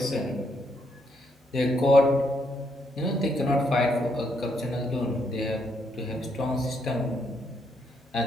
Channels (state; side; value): normal; both; correlation 0.75